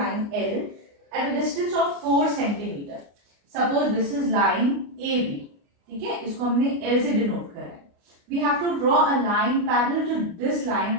L at a distance of 4 cm. Suppose this is line AB. ठीक है, इसको हमने L से denote करा है. We have to draw a line parallel to this line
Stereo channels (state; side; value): late; left; 29 ms